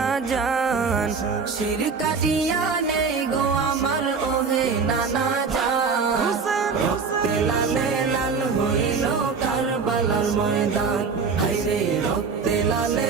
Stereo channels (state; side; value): quieter; left; 5.2 dB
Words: জান। শির কাটিয়া নে গো আমার ওহে নানা জান। রক্তে লালে লাল হইল কারবালার ময়দান। হায়রে রক্তে